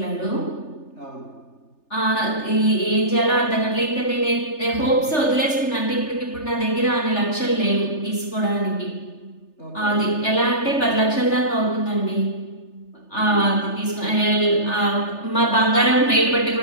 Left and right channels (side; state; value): right; late; 3.4 ms